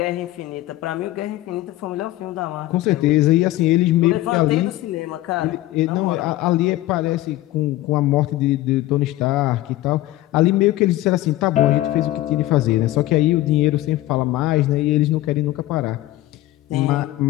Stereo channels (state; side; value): quieter; right; 16.2 dB